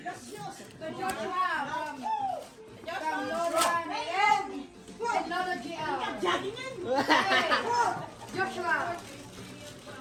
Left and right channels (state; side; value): identical; both; correlation 1.00